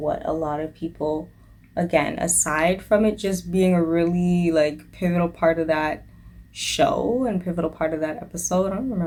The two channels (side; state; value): both; identical; correlation 1.00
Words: a lot of people, again, aside from it just being a really like pivotal part of that show and pivotal part of that episode, I don't